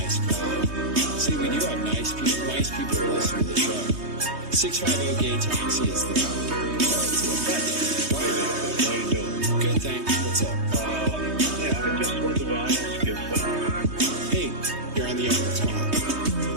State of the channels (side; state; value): left; late; 3.2 ms